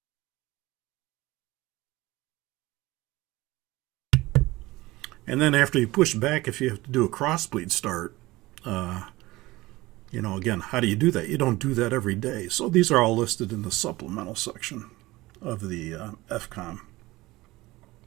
And then after you push back, if you have to do a crossbleed start, again, how do you do that? You don't do that every day. So these are all listed in the supplemental section of the FCOM.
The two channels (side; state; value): left; quieter; 19.5 dB